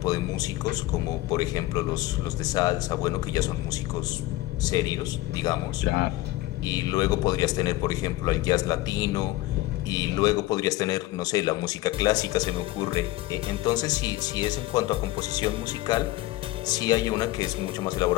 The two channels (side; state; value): right; quieter; 17.5 dB